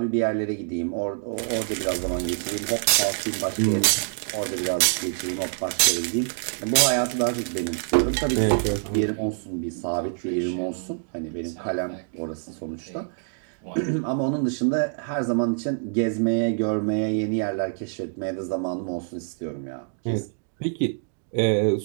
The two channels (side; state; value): left; silent; digital silence